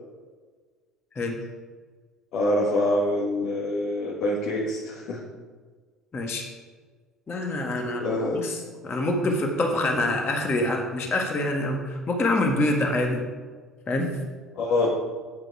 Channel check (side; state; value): both; normal; correlation 0.57